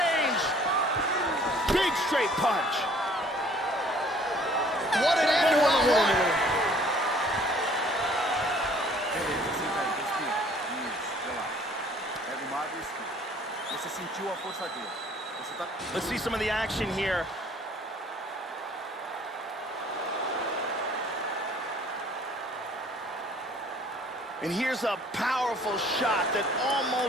Big straight punch. What an end to round one. Let's see some of the action here. And here's a powerful shot that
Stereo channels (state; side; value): normal; both; correlation 0.56